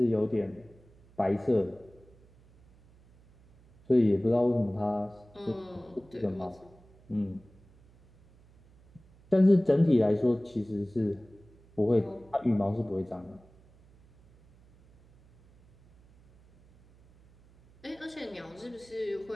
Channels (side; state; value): right; noise; hum, 28 dB below the sound